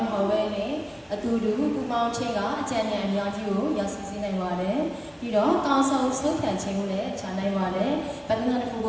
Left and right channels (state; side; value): identical; both; correlation 1.00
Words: းမဟုတ်ပဲနဲ့အတူတူပူပေါင်းခြင်းကအကြံဉာဏ်အများကြီးကိုရောက်စီနိုင်ပါတယ်ပြီးတော့ကောင်းဆုံးဆုံးဖြတ်ခြင်းကိုလည်းချနိုင်ပါတယ်ဗဒနာတစ်ခုကိ